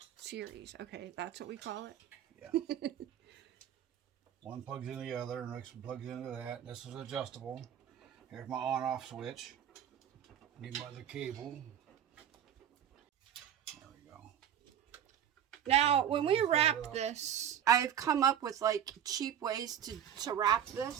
Series. Okay, that's what we call it. Yeah. One plugs into the other, and next one plugs into that. This is adjustable. Here's my on-off switch. Need my other cable. There we go. Now, when we wrap this, I've come up with like cheap ways to wrap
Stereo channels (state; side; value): quieter; left; 9.6 dB